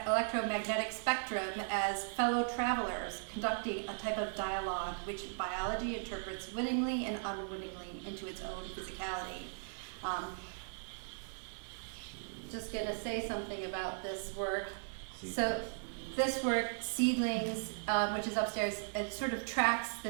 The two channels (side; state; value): left; silent; digital silence